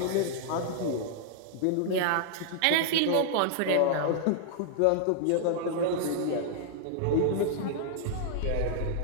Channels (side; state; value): both; different; correlation -0.01